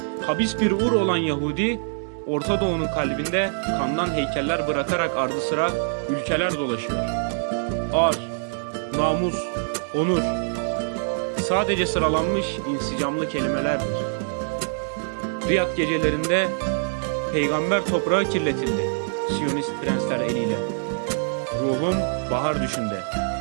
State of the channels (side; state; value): left; silent; digital silence